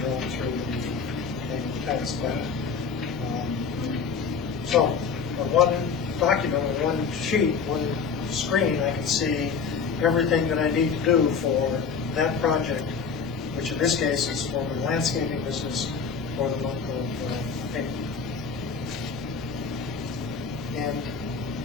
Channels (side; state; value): right; quieter; 5.7 dB